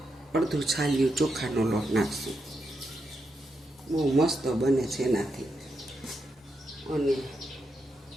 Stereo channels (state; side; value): normal; both; correlation 0.84